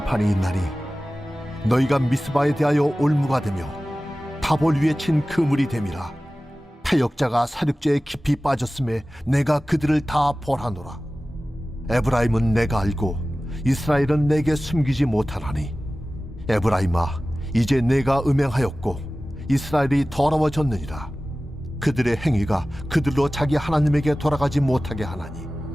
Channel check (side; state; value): both; normal; correlation 0.96